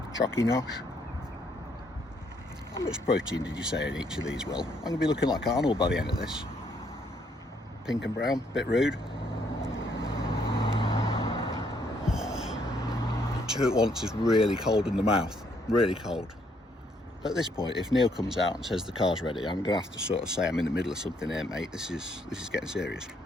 Chocky nosh. How much protein did you say in each of these, Will? I'm going to be looking like Arnold by the end of this. Pink and brown, bit rude. Two at once is really cold in the mouth, really cold. At this point, if Neil comes out and says the car's ready, I'm going to have to sort of say I'm in the middle of something here, mate. This is getting serious.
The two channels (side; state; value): both; normal; correlation 0.70